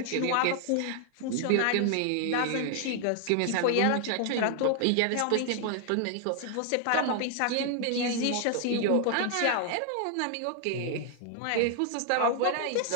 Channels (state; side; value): different; both; correlation 0.00